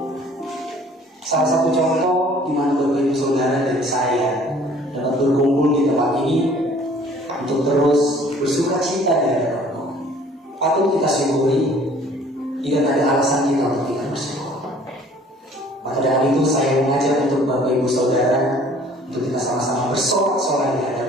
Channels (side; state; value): both; normal; correlation 0.54